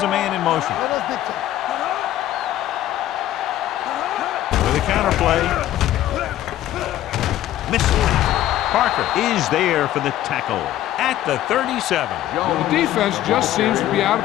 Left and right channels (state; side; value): quieter; right; 13.3 dB